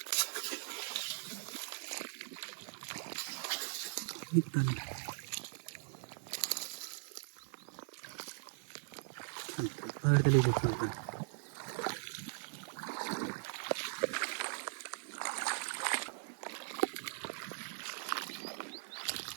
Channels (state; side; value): silent; left; 51 dB below the other